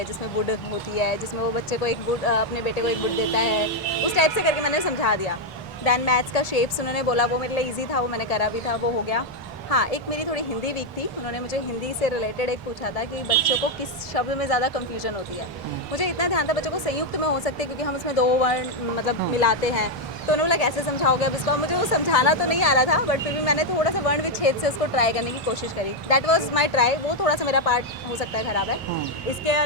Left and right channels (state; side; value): normal; both; correlation 0.02